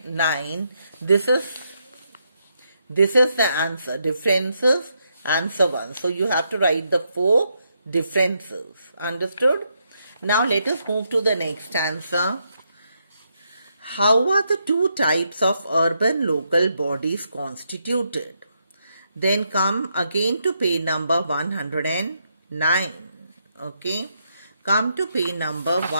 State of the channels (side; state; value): both; inverted; correlation -0.79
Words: this is the answer. Differences, answer 1. So you have to write the 4 differences. Understood? Now let us move to the next answer. How are the 2 types of urban local bodies constituted? Then come again to page number 109. Okay. Come to page number